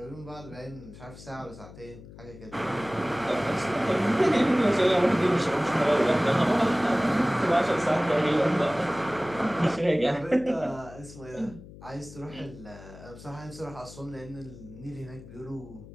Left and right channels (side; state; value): left; noise; hum, 17 dB below the sound